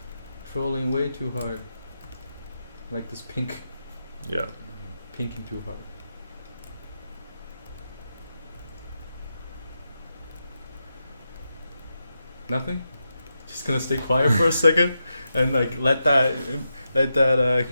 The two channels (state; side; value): inverted; both; correlation -0.87